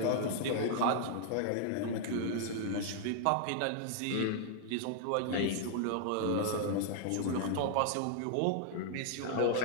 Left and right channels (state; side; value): different; both; correlation -0.01